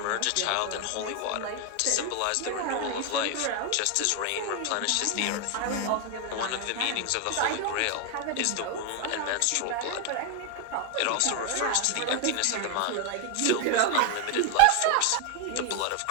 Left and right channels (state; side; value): different; both; correlation 0.00